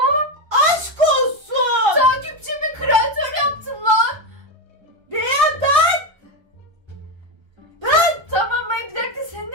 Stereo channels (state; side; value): late; left; 1.3 ms